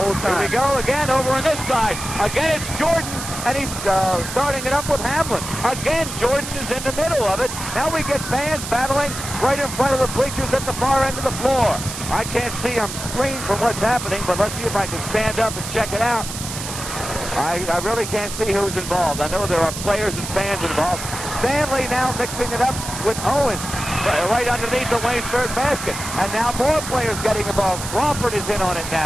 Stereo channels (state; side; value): noise; right; hiss, 8 dB below the sound